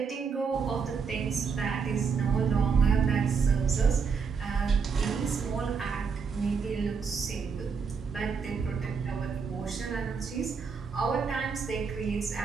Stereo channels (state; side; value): quieter; left; 5.7 dB